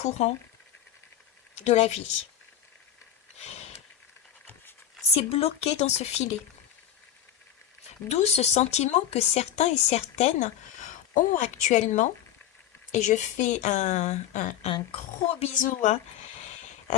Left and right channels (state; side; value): quieter; right; 10.5 dB